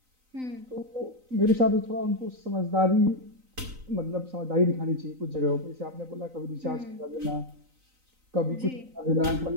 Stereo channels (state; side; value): late; left; 3.9 ms